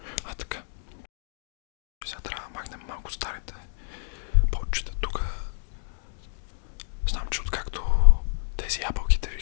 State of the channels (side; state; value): right; silent; digital silence